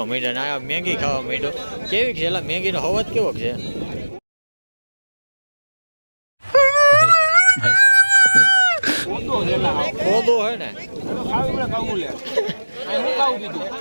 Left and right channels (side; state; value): both; inverted; correlation -1.00